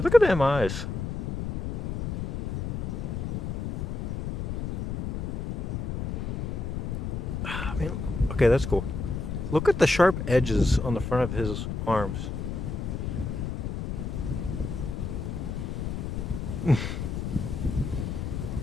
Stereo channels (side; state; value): left; noise; rumble, 3 dB below the sound